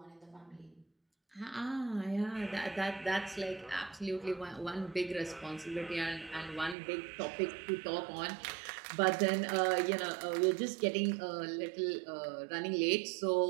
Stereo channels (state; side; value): drops out; left; at 6.8 s